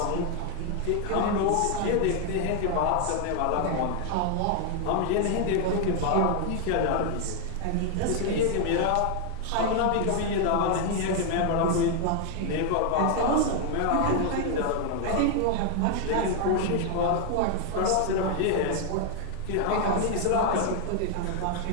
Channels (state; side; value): different; both; correlation 0.00